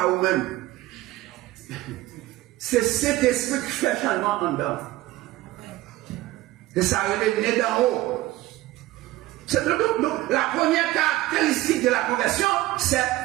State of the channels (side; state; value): left; quieter; 17.0 dB